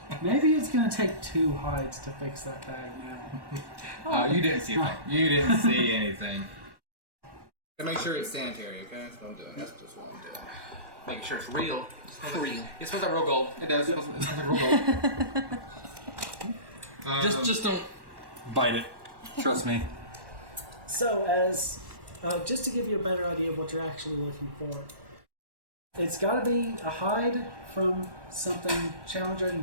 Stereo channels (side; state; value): left; late; 1.1 ms